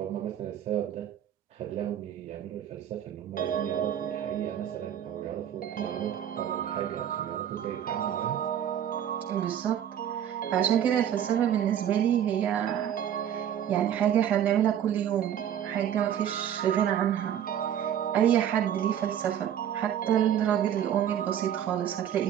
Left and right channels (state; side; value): quieter; left; 9.9 dB